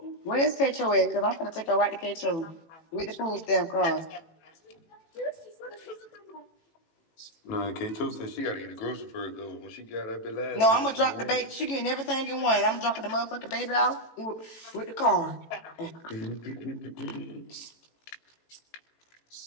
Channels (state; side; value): late; right; 18 ms